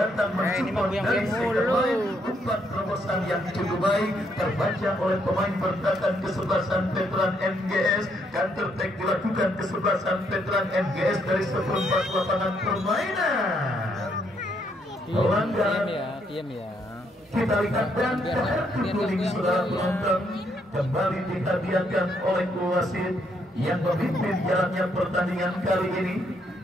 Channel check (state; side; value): normal; both; correlation 0.73